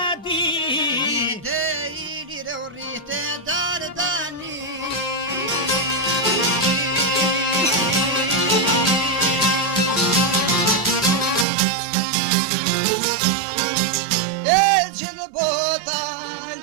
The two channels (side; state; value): left; drops out; at 11.5 s